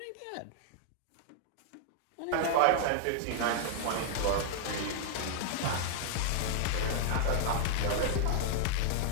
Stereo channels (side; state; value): both; different; correlation -0.01